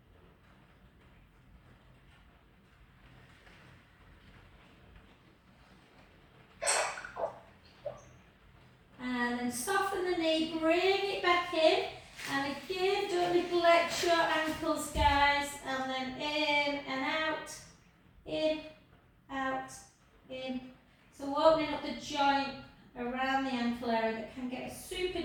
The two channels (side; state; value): both; identical; correlation 1.00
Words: And then soften the knee, bring it back in. And again, don't neglect your ankles, guys. And then in and out, in, out, in. So opening up the joint around the ankle area that can get a super